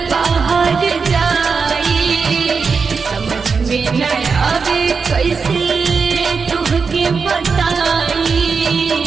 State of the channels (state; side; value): quieter; left; 5.2 dB